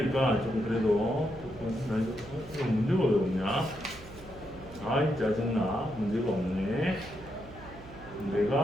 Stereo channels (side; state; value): right; noise; hum, 17 dB below the sound